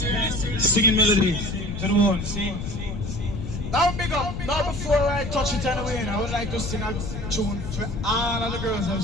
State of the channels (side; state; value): left; noise; rumble, 6 dB below the sound